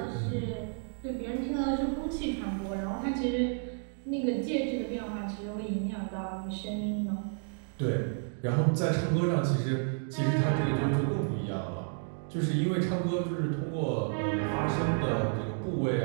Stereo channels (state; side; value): silent; left; 57 dB below the other